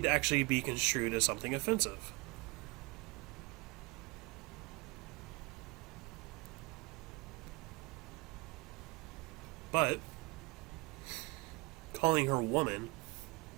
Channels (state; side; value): quieter; left; 26.3 dB